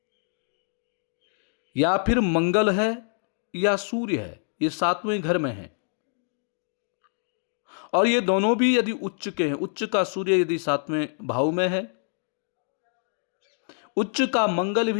या फिर मंगल है या सूर्य है, ये सातवें घर में है और ये दोनों भी यदि उच्च के हैं, उच्च का सूर्य यदि सातवें भाव में है, उच्च का मंगल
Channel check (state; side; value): silent; right; 61 dB below the other